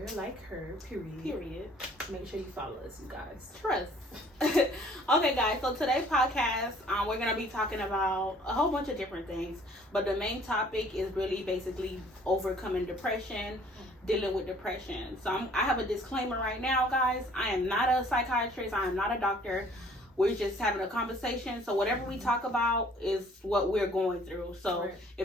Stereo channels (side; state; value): both; normal; correlation 0.56